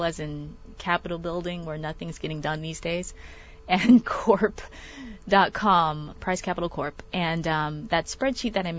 as in Capitol building where nothing's getting done these days, and corp.com, Price Capital Corp. And that spreadsheet that I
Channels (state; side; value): identical; both; correlation 1.00